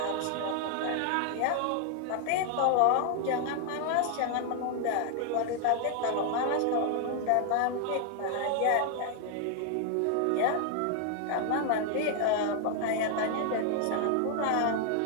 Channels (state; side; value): different; both; correlation 0.00